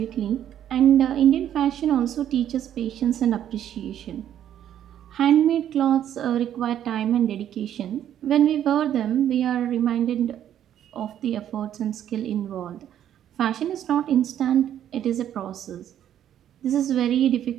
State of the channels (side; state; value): left; quieter; 10.6 dB